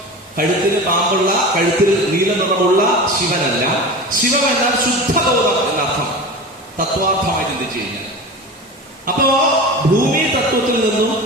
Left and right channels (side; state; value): both; normal; correlation 0.31